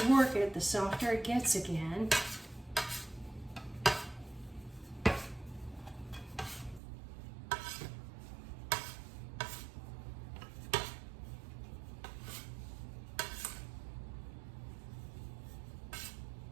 work it, the softer it gets again.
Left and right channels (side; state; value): left; drops out; at 6.8 s